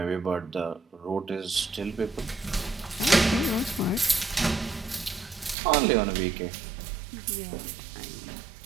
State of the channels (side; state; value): left; drops out; at 5.6 s